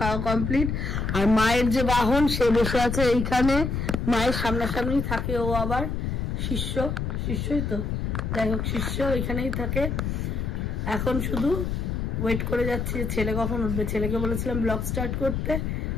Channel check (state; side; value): noise; left; rumble, 1 dB below the sound